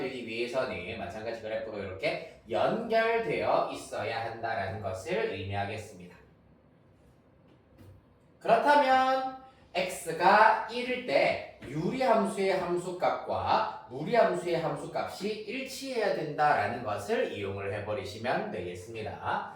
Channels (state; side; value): identical; both; correlation 1.00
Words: 위해서는 마찬가지 그래프가 이렇게 연결되어 있어야 한다라는 것을 의미하겠습니다. 그렇다면 x가 1일 때 유리함수의 함수값과 무리함수의 함수값이 일치해야 된다라는 것을 이용을 해버리시면 되겠습니다.